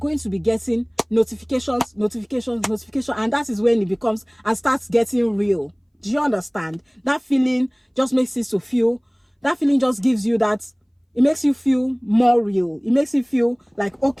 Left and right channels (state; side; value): identical; both; correlation 1.00